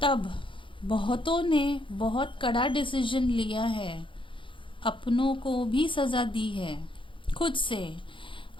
तब बहुतों ने बहुत कड़ा डिसीजन लिया है, अपनों को भी सजा दी है खुद से।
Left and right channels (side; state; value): right; late; 0.25 ms